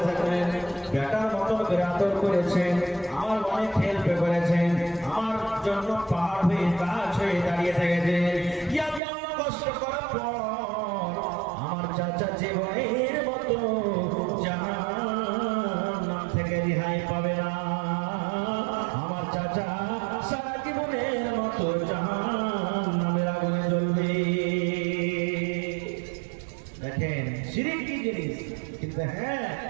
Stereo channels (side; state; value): left; drops out; at 9.0 s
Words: বেটার মতো করে আদর করেছেন, আমার অনেক হেল্প করেছেন, আমার জন্য পাহাড় হয়ে গাছ হয়ে দাঁড়িয়ে থেকেছে। কষ্ট করার পর আমার চাচা জীবনের মতো জাহান্নাম থেকে রেহাই পাবে না। আমার চাচা সারা জীবনের মতো জাহান্নামের আগুনে জ্বলবে। দেখেন শিরক কি জিনিস, কিন্তু হ্যাঁ